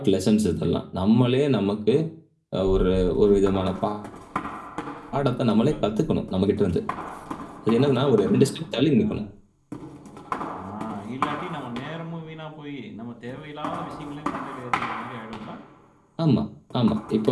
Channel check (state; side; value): identical; both; correlation 1.00